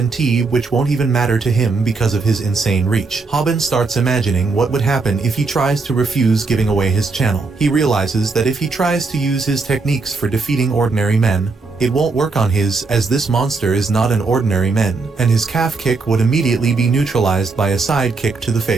T which won't even matter to him because of his insane reach. Haben starts imagining what would happen if he tries to refuse giving away his channel. He realizes that if he tries to use his techniques for defeating ordinary men, it won't work on his, as this monster is not an ordinary man, and his calf kick would immediately be neutralized by a side kick to the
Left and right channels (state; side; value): quieter; left; 4.0 dB